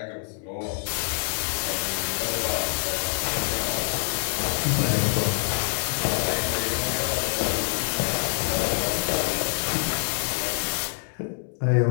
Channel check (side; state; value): right; silent; 60 dB below the other